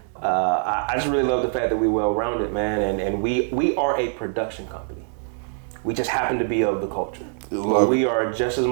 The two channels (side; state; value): left; silent; 63 dB below the other